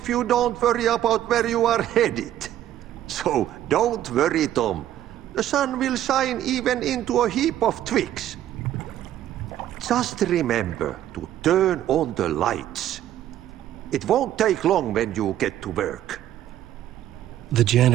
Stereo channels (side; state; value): left; quieter; 12.3 dB